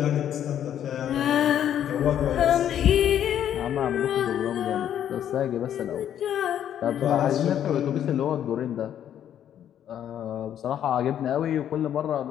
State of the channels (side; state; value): right; quieter; 10.2 dB